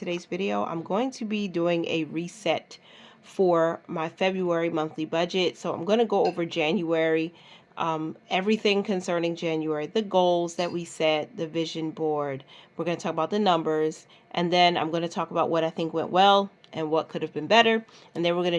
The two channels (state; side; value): identical; both; correlation 1.00